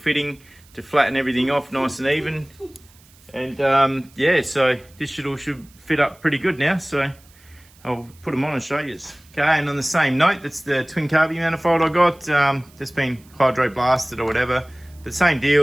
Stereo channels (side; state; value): right; noise; hiss, 28 dB below the sound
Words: to flatten everything off nice and even. And yeah, so this should fit up pretty good now. So I'll put them on and show you. Okay, and on the same note, that's the twin carby manifold I got. That's been hydro blasted or whatever. But same